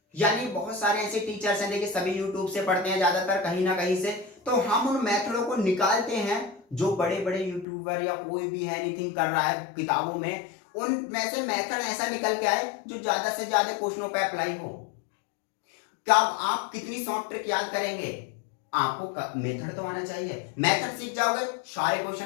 यानी बहुत सारे ऐसे टीचर्स हैं, देखिए सभी यूट्यूब से पढ़ते हैं ज्यादातर कहीं ना कहीं से, तो हम उन मेथडों को निकालते हैं जो बड़े बड़े यूट्यूबर या कोई भी है एनीथिंग कर रहा है किताबों में, उनमें से मेथड ऐसा निकल के आए जो ज्यादा से ज्यादा क्वेश्चनों पे अप्लाई हो। क्या आप कितनी शॉर्ट ट्रिक याद करेंगे? आपको मेथड तो आना चाहिए। मेथड सीख जाओगे, सारे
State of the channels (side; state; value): right; drops out; at 7.7 s